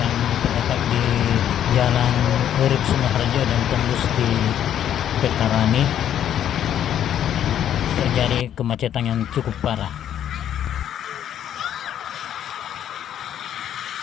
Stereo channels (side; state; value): right; quieter; 10.3 dB